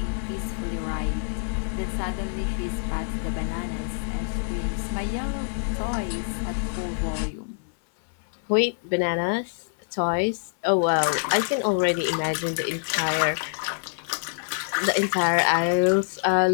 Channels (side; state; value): right; silent; digital silence